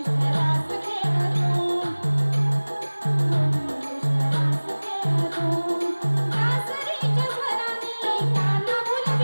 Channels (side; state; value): both; inverted; correlation -1.00